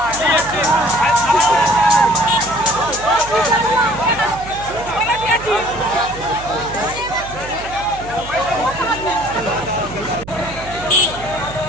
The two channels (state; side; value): noise; right; hum, 14 dB below the sound